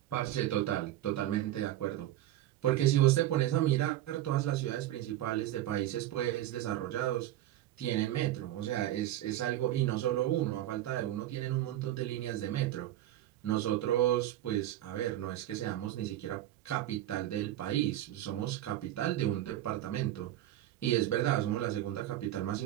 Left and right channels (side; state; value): left; quieter; 13.6 dB